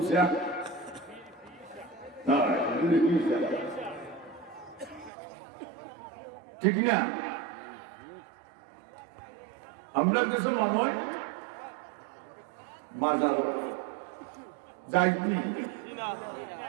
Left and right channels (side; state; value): left; drops out; at 5.1 s